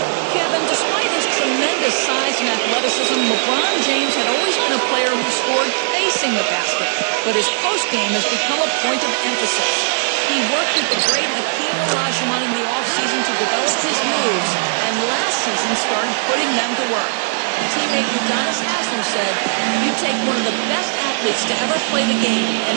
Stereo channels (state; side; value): silent; left; digital silence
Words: Kevin, despite his tremendous size and athleticism, LeBron James had always been a player who scored facing the basket, but his post-game has become a point of emphasis. He worked with the great Hakeem Olajuwon in the offseason to develop his moves, and last season started putting them to work. Teammate Udonis Haslem said, "You take one of the best athletes to ever play the game, and